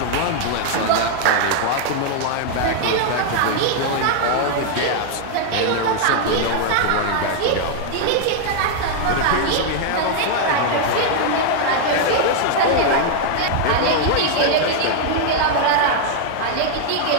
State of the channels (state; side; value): different; both; correlation 0.00